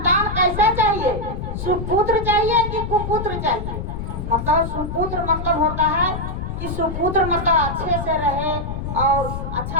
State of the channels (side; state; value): left; noise; rumble, 5 dB below the sound